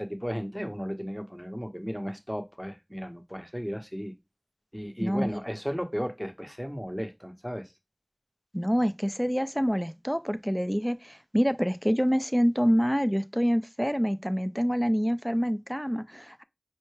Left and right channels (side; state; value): both; identical; correlation 1.00